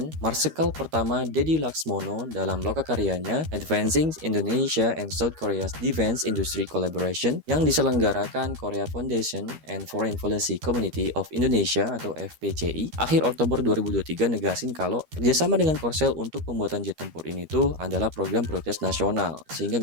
Marsikal Pertama Dedi Laksmono dalam lokakaryanya Advancing Indonesia and South Korea's Defense Industry Collaboration yang diselenggarakan Korea Foundation and Foreign Policy Community of Indonesia atau FPCI, akhir Oktober 2023 negasin kalau kerjasama dengan Korsel untuk pembuatan jet tempur ini tuh adalah program prioritas nasional, sehingga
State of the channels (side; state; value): left; late; 13 ms